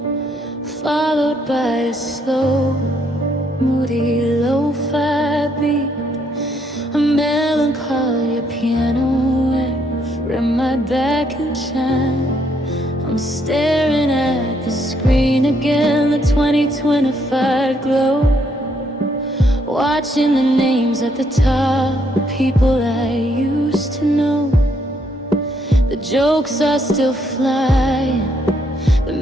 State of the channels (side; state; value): both; normal; correlation 0.72